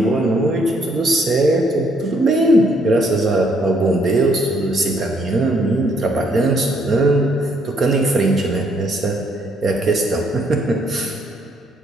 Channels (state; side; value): normal; both; correlation 0.69